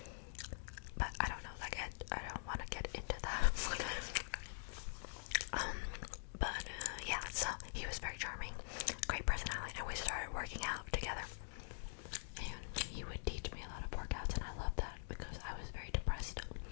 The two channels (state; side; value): silent; right; digital silence